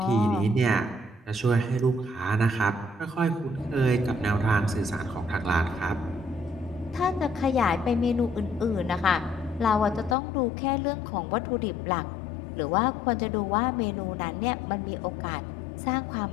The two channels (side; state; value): right; drops out; at 10.2 s